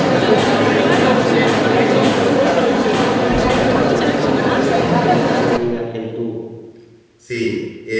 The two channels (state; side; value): identical; both; correlation 1.00